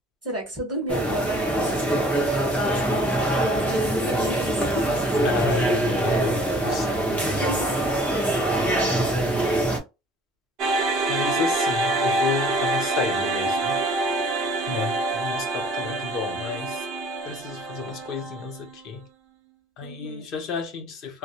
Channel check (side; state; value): both; normal; correlation 0.53